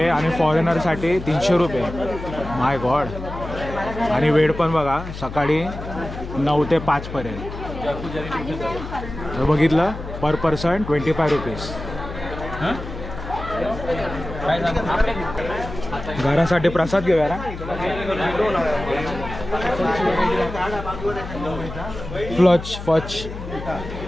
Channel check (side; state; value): left; noise; hum, 9 dB below the sound